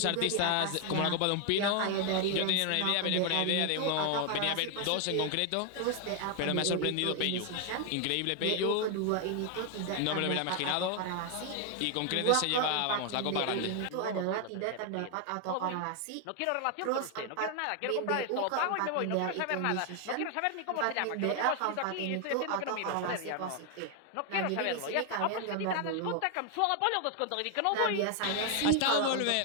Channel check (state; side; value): different; both; correlation 0.00